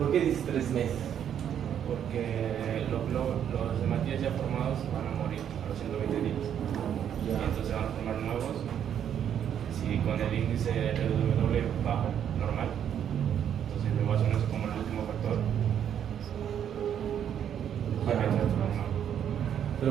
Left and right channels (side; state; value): left; quieter; 9.2 dB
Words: qué dices 3 meses? porque los hematíes ya formados van a morir a los 120 días. Y entonces van a formar nuevos. Si con el índice RW bajo, normal, entonces la evaluación es como el último factor. ¿Pero